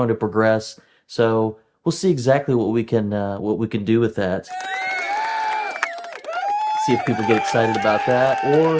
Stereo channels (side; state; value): both; identical; correlation 1.00